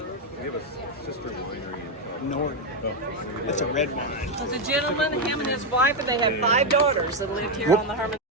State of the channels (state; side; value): normal; both; correlation 0.04